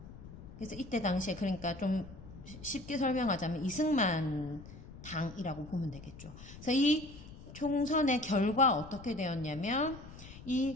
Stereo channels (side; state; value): left; noise; rumble, 15 dB below the sound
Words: 그래서 이때 당시에, 그러니까 좀 쉽게 설명하자면 이승만 당이라고 보면 되겠죠. 그래서 이 총선의 결과 어떻게 되었냐면